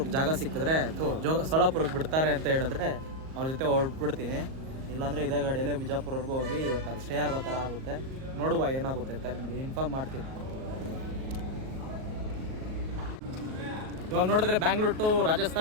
ಜಾಗ ಸಿಕ್ಕಿದ್ರೆ ಸೋಲಾಪುರಕ್ಕೆ ಬಿಡ್ತಾರೆ ಅಂತ ಹೇಳಿದ್ರೆ ಅವ್ರ ಜೊತೆ ಹೊರಟ್ಬಿಡ್ತೀನಿ. ಇಲ್ಲಾಂದರೆ ಇದೇ ಗಾಡಿಯಲ್ಲೇ ಬಿಜಾಪುರವರೆಗೂ ಹೋಗಿ ಇವತ್ತು ಅಲ್ಲಿ ಸ್ಟೇ ಆಗೋ ಥರ ಆಗುತ್ತೆ. ನೋಡುವ ಏನಾಗುತ್ತೆ ಅಂತ ನಿಮಗೆ ಇನ್ಫಾರ್ಮ್ ಮಾಡ್ತೀನಿ. ಇವಾಗ ನೋಡಿದ್ರೆ ಬ್ಯಾಂಗ್ಳೂರ್ ಟು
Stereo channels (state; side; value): late; left; 38 ms